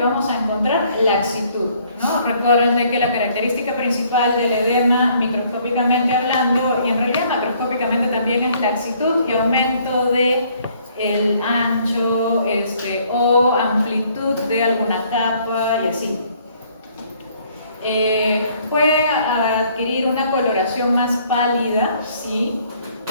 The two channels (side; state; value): both; inverted; correlation -0.62